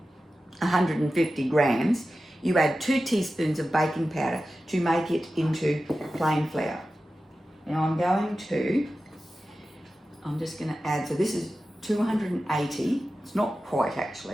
150 grams, you add 2 teaspoons of baking powder to make it into plain flour. Now I'm just going to add, so this is 280, it's not quite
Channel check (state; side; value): normal; both; correlation 0.93